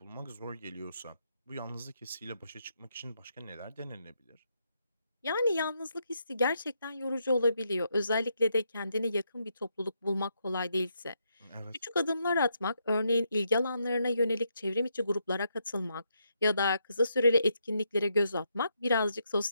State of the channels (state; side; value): inverted; both; correlation -0.79